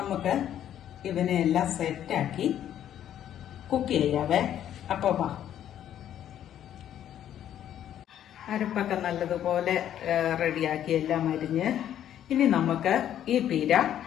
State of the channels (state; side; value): quieter; right; 10.8 dB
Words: ഇവനെല്ലാം സെറ്റാക്കി കുക്ക് ചെയ്യാവേ. അപ്പൊ വാ. അരപ്പൊക്കെ നല്ലതുപോലെ റെഡിയാക്കി എല്ലാം അരിഞ്ഞ് ഇനി നമുക്ക് ഈ പീര